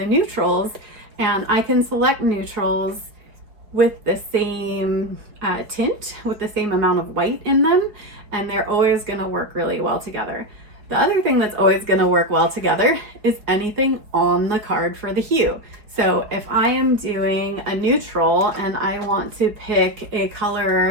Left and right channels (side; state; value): left; late; 4.5 ms